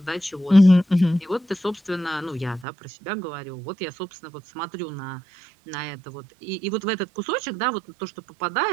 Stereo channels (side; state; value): left; drops out; at 2.7 s